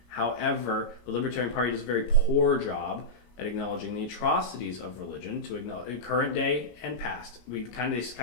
However, the Libertarian Party does a very poor job at acknowledging the atrocities of religion, to acknowledge current day and past. They kind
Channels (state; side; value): late; right; 33 ms